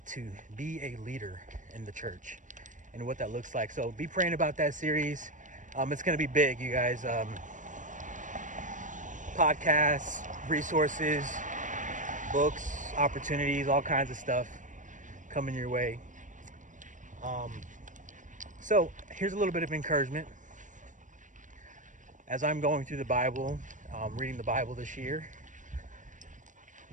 to be a leader in the church and what that looks like. So be praying about that series. It's going to be big, you guys. Podcasts, resources, books, opportunities, all kinds of stuff coming your way. So here's a little bit of encouragement. As I'm going through the Bible, reading the Bible this year,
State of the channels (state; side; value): late; left; 0.37 ms